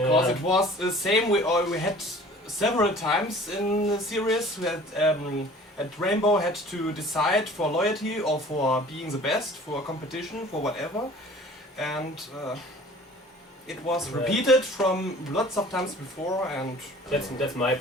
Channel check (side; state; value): both; normal; correlation 0.47